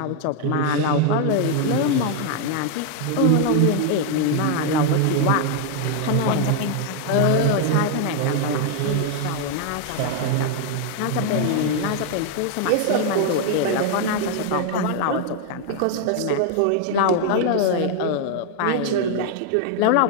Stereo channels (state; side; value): different; both; correlation 0.00